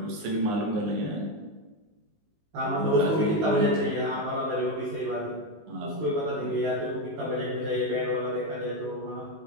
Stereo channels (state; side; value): late; left; 19 ms